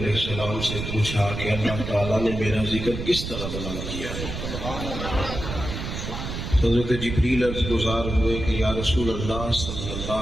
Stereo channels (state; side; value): noise; right; rumble, 6 dB below the sound